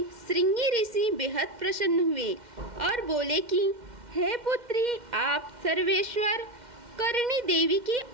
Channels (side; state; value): left; late; 2.1 ms